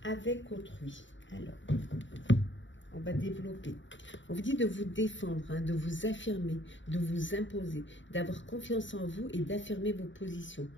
avec autrui. Alors, on va développer. On vous dit de vous défendre, hein, de vous affirmer, de vous imposer, d'avoir confiance en vous et d'affirmer vos positions.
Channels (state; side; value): late; right; 0.55 ms